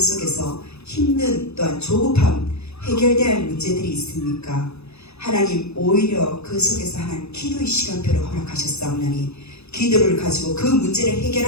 힘든 또한 조급함 해결돼야 할 문제들이 있습니까? 하나님 오히려 그 속에서 하나님 기도의 시간표를 허락하셨사오나니 기도를 가지고 그 문제를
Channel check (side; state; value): right; late; 0.79 ms